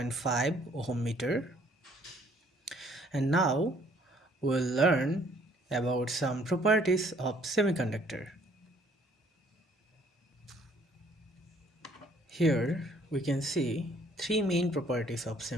ohm meter. And now we'll learn about some properties of semiconductor. Here we can see three main properties of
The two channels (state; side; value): normal; both; correlation 0.61